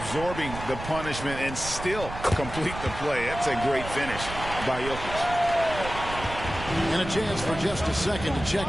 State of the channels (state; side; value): noise; right; rumble, 10 dB below the sound